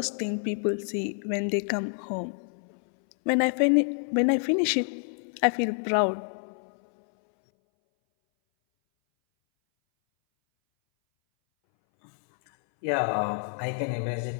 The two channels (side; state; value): right; silent; 60 dB below the other